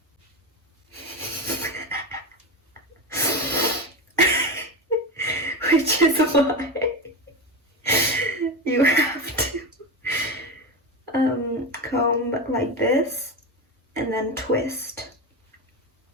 which is why you have to comb like this and then twist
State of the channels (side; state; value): both; normal; correlation 0.19